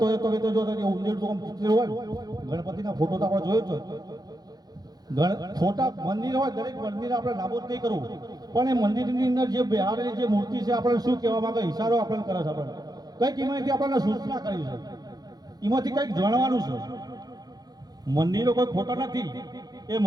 તો તમે તો જો ઉંજેડ તો હોય. ગણપતિના ફોટો તો આપણે જોયો છે. ફોટા મંદિર હોય, દરેક મંદિર આપણે નાબૂદ નહીં કરવું, પણ એ મંદિરની અંદર જે બિહારેલી જે મૂર્તિ છે આપણે શું કહેવા માંગે, ઈશારો આપણને કરે છે. આપણે કંઈક એમાંથી આપણને સૂચના કરી છે, એમાંથી કંઈક જાણવાનું છે. મંદિરો કોઈ ખોટા નથી. એ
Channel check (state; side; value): late; left; 0.19 ms